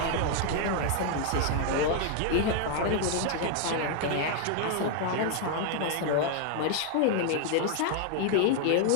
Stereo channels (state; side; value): different; both; correlation 0.00